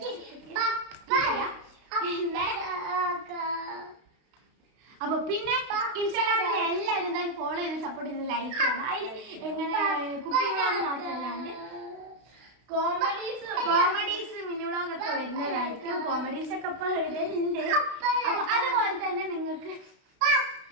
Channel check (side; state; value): left; late; 32 ms